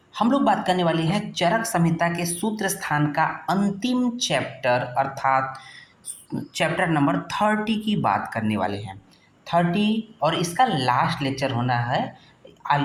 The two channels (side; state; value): both; identical; correlation 1.00